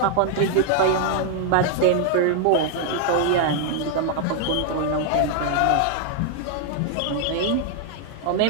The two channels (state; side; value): different; both; correlation 0.00